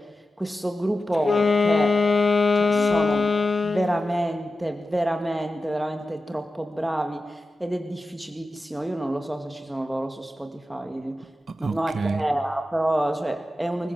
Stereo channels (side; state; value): both; normal; correlation 0.92